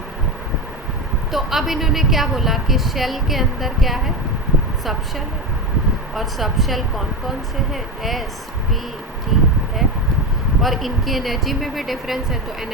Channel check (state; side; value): normal; both; correlation 0.18